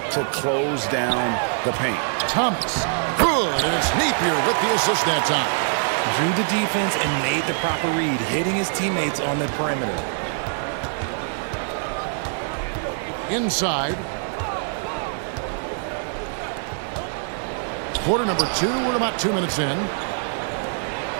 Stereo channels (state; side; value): silent; left; digital silence